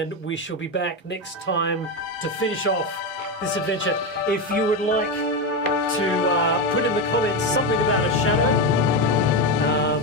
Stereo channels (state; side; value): normal; both; correlation 0.13